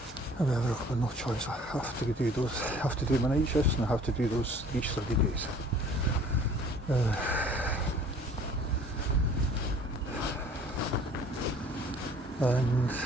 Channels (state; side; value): normal; both; correlation 0.52